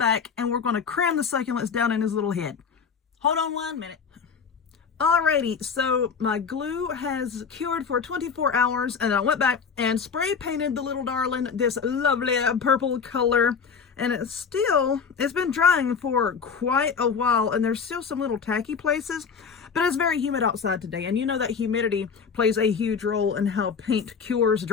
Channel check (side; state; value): right; quieter; 6.1 dB